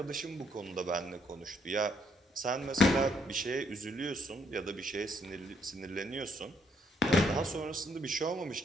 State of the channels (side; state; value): both; normal; correlation 0.72